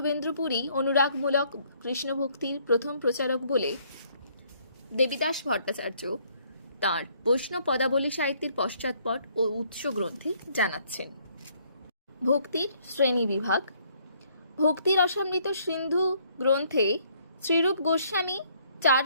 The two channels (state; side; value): inverted; both; correlation -0.65